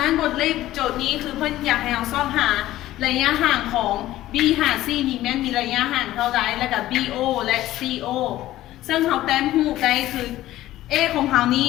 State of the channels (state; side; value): quieter; right; 14.9 dB